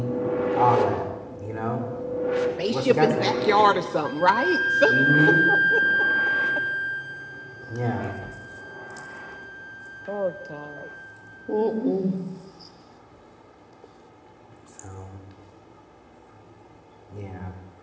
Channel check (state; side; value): identical; both; correlation 1.00